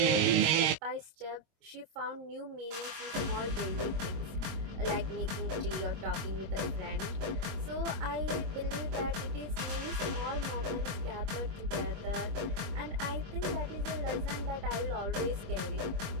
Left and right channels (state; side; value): late; left; 25 ms